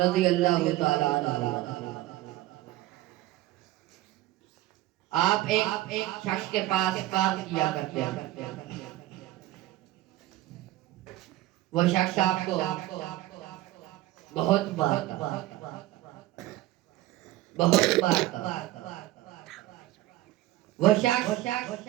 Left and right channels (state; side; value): quieter; left; 16.3 dB